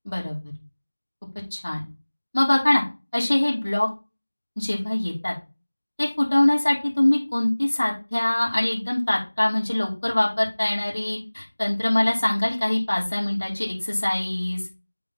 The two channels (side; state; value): both; inverted; correlation -1.00